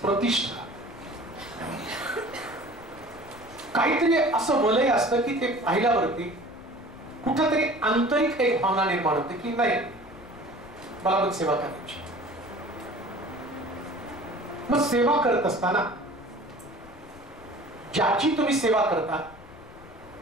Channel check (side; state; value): left; noise; rumble, 20 dB below the sound